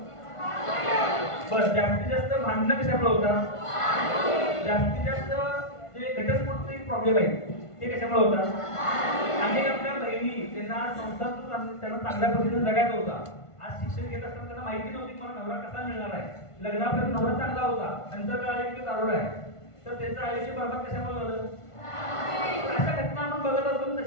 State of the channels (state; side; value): late; right; 1.5 ms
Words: बरं, जास्तीत जास्त भांडणं कशामुळे होतात? जास्तीत जास्त जे घटस्फोटचे प्रॉब्लेम आहेत ते कशामुळे होतात? आणि आपल्या बहिणी त्यांना संसार त्यांना चांगल्या पद्धतीने जगायचा होता. आज शिक्षण घेत असताना त्यांना माहिती नव्हती मला नवरा कसा मिळणार आहे. लग्नापर्यंत नवरा चांगला होता, नंतर कळाले की दारुडा आहे. तर त्यांचं आयुष्य बरबाद कशामुळे झालं? अशा घटना आपण बघत असतो.